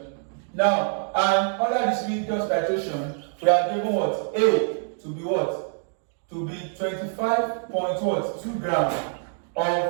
Now, and under this redox titration, we are given A to be to be 25.2 grams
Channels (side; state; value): left; silent; digital silence